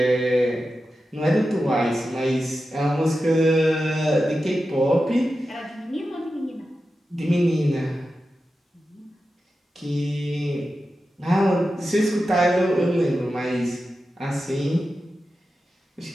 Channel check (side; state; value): both; normal; correlation 0.91